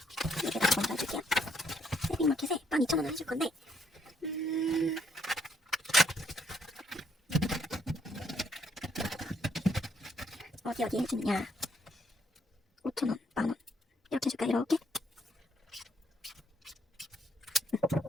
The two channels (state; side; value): normal; both; correlation 0.71